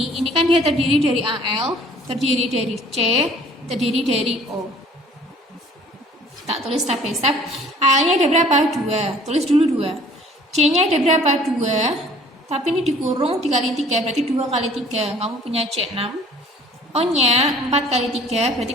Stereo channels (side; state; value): both; normal; correlation 0.53